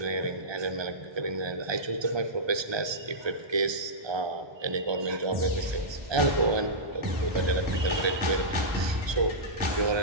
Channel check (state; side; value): late; left; 1.2 ms